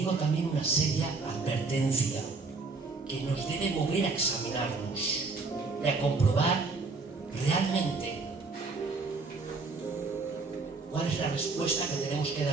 también una seria advertencia que nos debe mover a examinarnos y a comprobar realmente cuál es la respuesta que tenemos que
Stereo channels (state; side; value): quieter; left; 4.0 dB